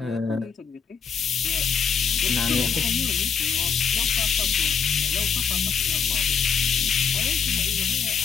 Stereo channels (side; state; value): right; quieter; 6.6 dB